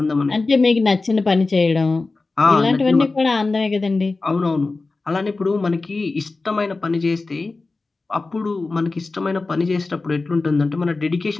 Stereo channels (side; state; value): right; quieter; 3.6 dB